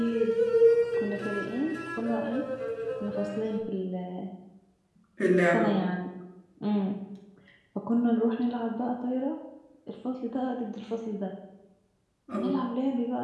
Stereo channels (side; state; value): both; identical; correlation 1.00